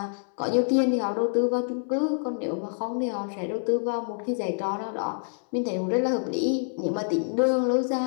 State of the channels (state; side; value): silent; right; 60 dB below the other